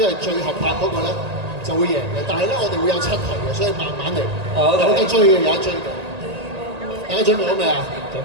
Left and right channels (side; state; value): left; late; 1.8 ms